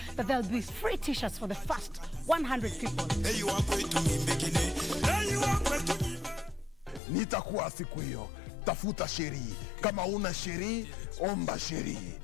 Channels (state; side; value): drops out; right; at 7.0 s